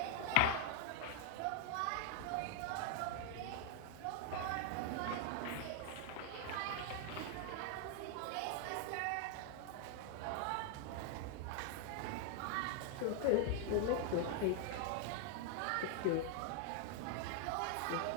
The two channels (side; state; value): both; different; correlation 0.00